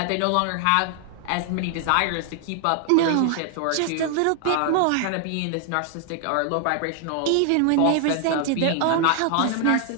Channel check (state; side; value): different; both; correlation 0.00